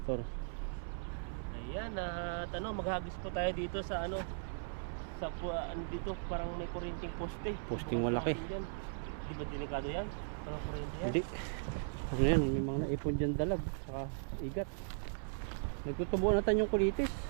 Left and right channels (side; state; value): left; silent; 53 dB below the other